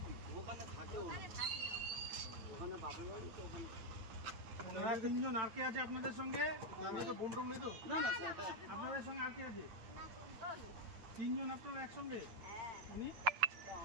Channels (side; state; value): left; late; 9.0 ms